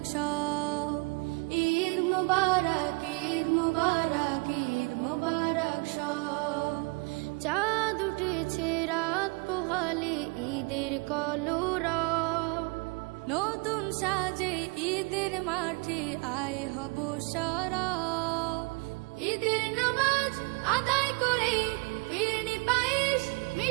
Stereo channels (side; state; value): left; quieter; 29.4 dB